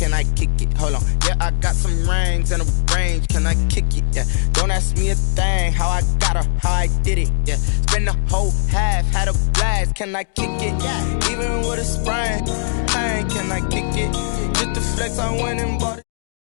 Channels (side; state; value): right; silent; digital silence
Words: I kick it? Hold on. Yeah, I got some rings and a range. Can I kick it? Yeah. Don't ask me a thing. How I got her, how I did it. Yeah. Spend the whole half, had a blast. Can I kick it? Even with a sprain, can I kick it? Just the flex, I went and bought it.